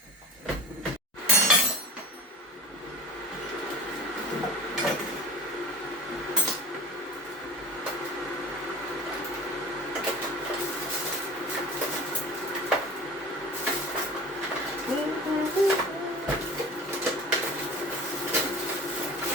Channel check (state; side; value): normal; both; correlation 0.36